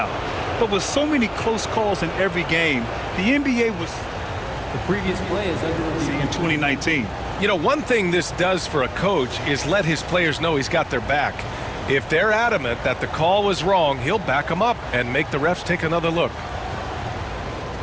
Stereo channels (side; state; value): both; identical; correlation 1.00